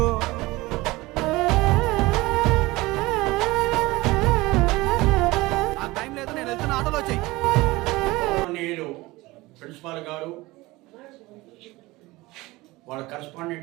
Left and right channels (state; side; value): quieter; left; 20.7 dB